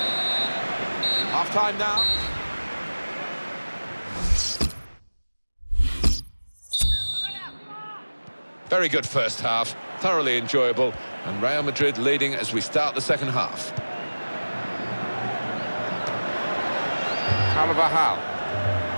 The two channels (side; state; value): both; inverted; correlation -1.00